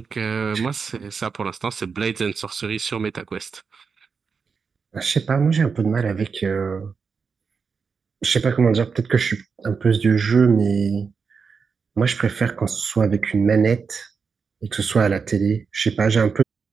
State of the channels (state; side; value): quieter; left; 5.5 dB